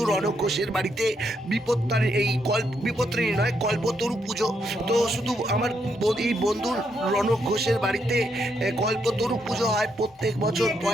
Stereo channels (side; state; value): both; normal; correlation 0.78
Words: রনক ঘোষের বাড়িতে বিপত্তারিণী নয়, কল্পতরু পুজো। তো শুধু আমার এই বন্ধুর রনক ঘোষের বাড়িতে কল্পতরু পুজো হয় প্রত্যেক বছর